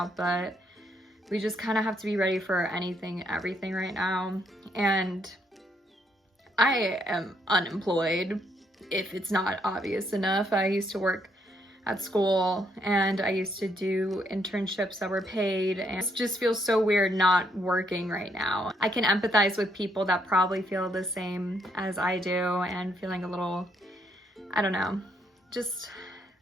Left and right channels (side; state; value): both; normal; correlation 0.73